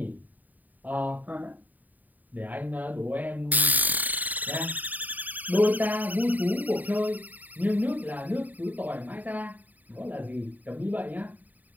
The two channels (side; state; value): left; late; 0.082 ms